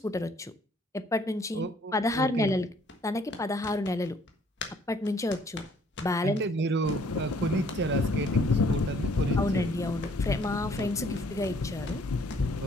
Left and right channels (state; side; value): normal; both; correlation 0.61